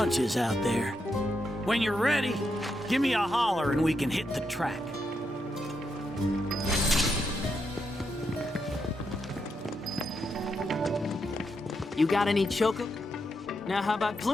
out there. When you're ready, give me a holler and we can hit the track. You got any choco? Now how about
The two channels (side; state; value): both; normal; correlation 0.82